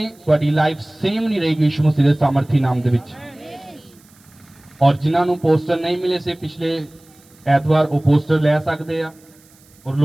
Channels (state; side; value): noise; right; hiss, 29 dB below the sound